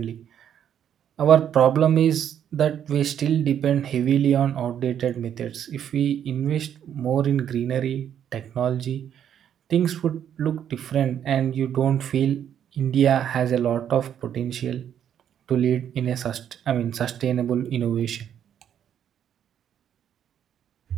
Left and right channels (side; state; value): left; quieter; 9.4 dB